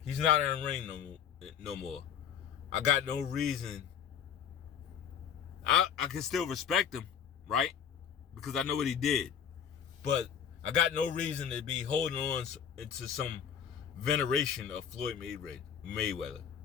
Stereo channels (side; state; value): right; quieter; 8.1 dB